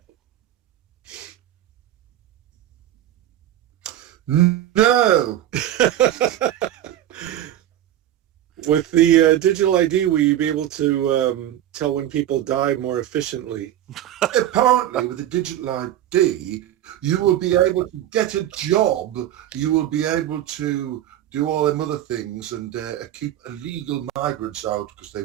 No. With the digital ID, will you be able to tell when people die more efficiently? Apparently, with the digital ID, you will be able to get a job. You will be able to do all them other things and keep illegal migrants out because they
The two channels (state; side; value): quieter; left; 12.2 dB